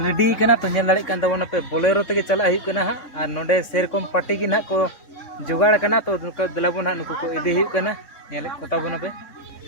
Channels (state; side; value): late; right; 3.5 ms